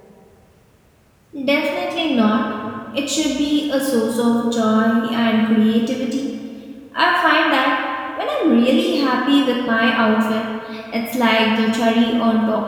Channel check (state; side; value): identical; both; correlation 1.00